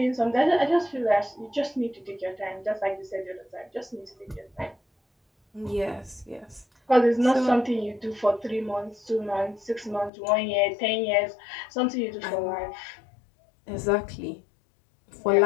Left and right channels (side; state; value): right; drops out; at 10.1 s